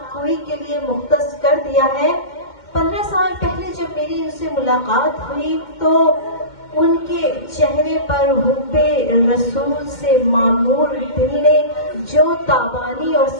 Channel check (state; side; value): late; right; 2.1 ms